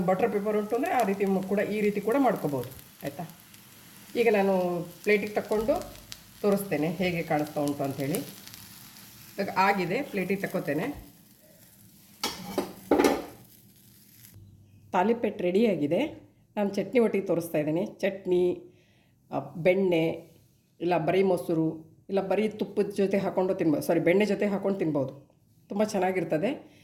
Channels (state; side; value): identical; both; correlation 1.00